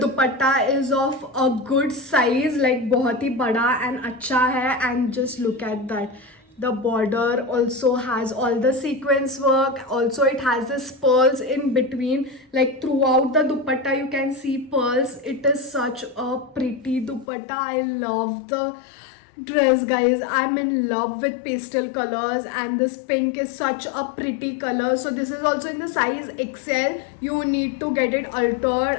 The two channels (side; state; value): right; drops out; at 17.2 s